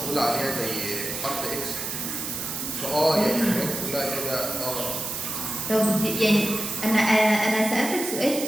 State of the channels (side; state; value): right; noise; hiss, 6 dB below the sound